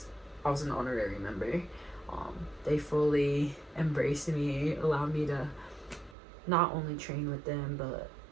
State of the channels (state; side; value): drops out; left; at 6.2 s